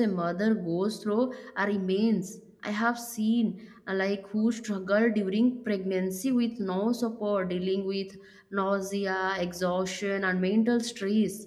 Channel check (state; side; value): identical; both; correlation 1.00